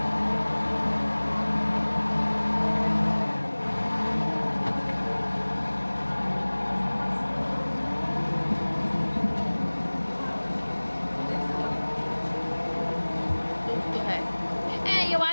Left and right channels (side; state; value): both; inverted; correlation -1.00